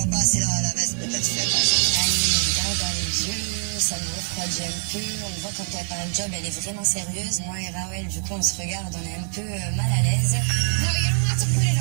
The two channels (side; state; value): left; silent; 58 dB below the other